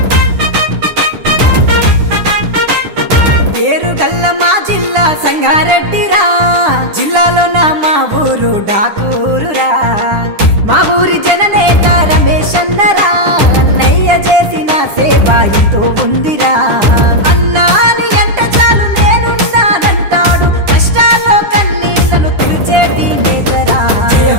పేరుగల్ల మా జిల్లా సంగారెడ్డిరా, జిల్లాలో నా మా ఊరు డాకూరురా. మా ఊరి జననేత రమేష్ అన్నరా, అన్నయ్య చేసిన సేవ ఎంతో ఉందిరా. అన్నాని ఎంట చాలు నేనున్నానంటాడు, కష్టాల్లో కన్నీళ్లను తుడిచేటి నేతరా.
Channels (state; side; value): late; left; 10 ms